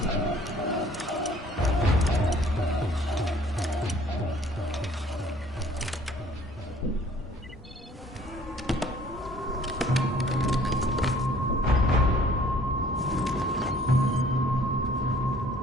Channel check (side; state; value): both; normal; correlation 0.56